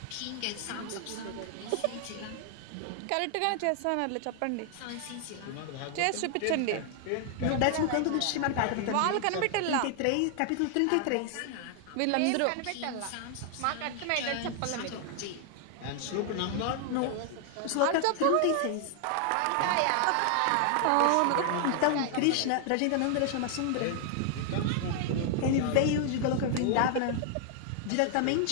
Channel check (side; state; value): both; different; correlation 0.00